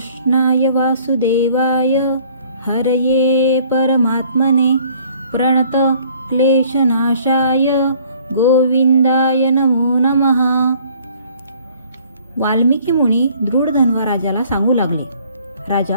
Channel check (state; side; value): inverted; both; correlation -0.57